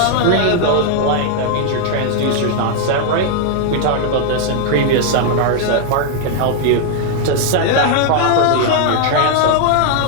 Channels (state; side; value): different; both; correlation 0.00